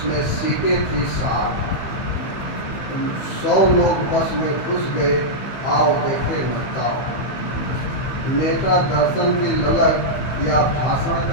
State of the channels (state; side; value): late; right; 15 ms